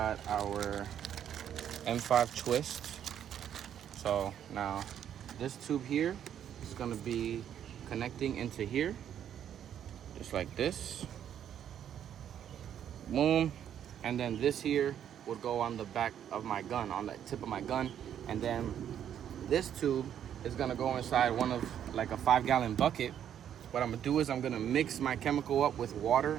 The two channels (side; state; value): left; quieter; 9.7 dB